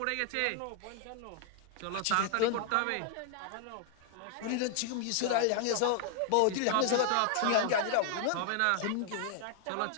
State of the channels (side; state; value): both; different; correlation 0.00